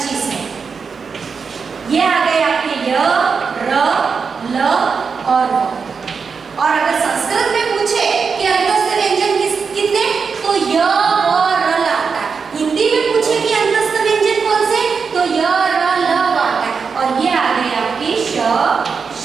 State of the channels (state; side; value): quieter; left; 5.5 dB